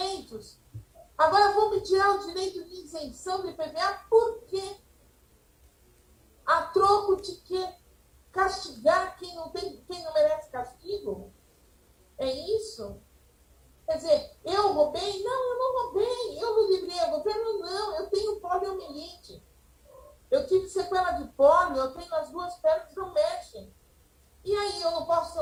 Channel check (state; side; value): identical; both; correlation 1.00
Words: agora vão me tirar o direito de isenção do IPVA, por quê? A troco de quê? Castigar quem não merece castigo? É isso? Quer dizer, eu roubei? Não, eu não roubei. Eu não livrei o governo? Não, eu tenho poliomielite. Eu tive sequela de pólio, eu tenho as duas pernas que não mexem. E aí, eu não posso ter